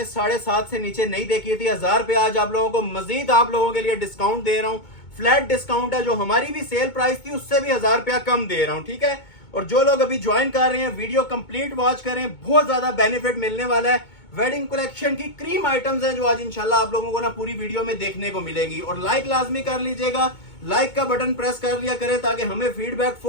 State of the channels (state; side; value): late; right; 2.2 ms